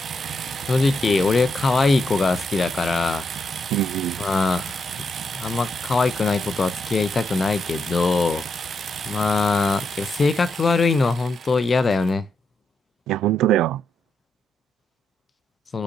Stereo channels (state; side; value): normal; both; correlation 0.81